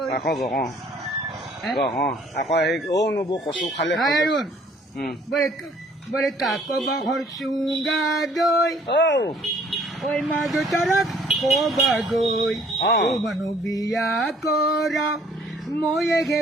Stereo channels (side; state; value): both; normal; correlation 0.59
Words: কচু খালে বলে কাক বাহর চুঙ্গা দই ওই মা তারা কবা গই ও মানু বিয়া করা ময়ে